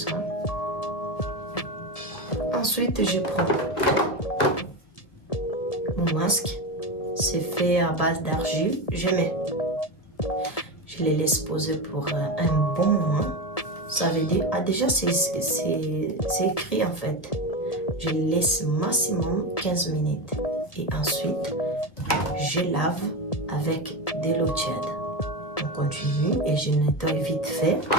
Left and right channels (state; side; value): late; right; 1.5 ms